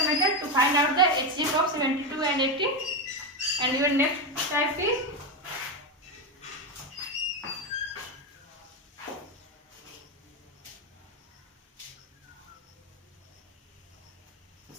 method to find out the HCF of 72 and 80. And your next type is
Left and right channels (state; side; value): normal; both; correlation 0.11